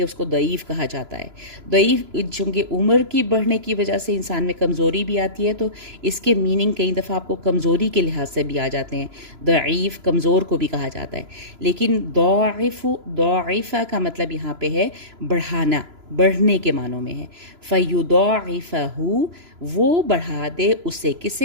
اس کو ضعیف کہا جاتا ہے۔ ضعیف چونکہ عمر کی بڑھنے کی وجہ سے انسان میں کمزوری بھی آتی ہے، تو اس کے میننگ کئی دفعہ آپ کو کمزوری کے لحاظ سے بھی آ جاتے ہیں، ضعیف کمزور کو بھی کہا جاتا ہے، لیکن ضعیفہ کا مطلب یہاں پہ ہے بڑھانا، بڑھنے کے معنوں میں ہے۔ فَيُضَاعِفَهُ، وہ بڑھا دے اسے،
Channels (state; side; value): late; left; 3.0 ms